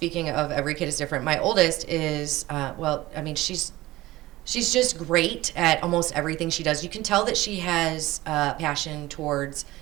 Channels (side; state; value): left; quieter; 17.9 dB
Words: of every kid is different, my oldest is, she's just great at almost everything she does. You can tell that she has passion towards,